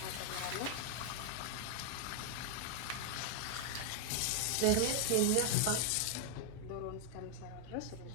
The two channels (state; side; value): different; both; correlation 0.00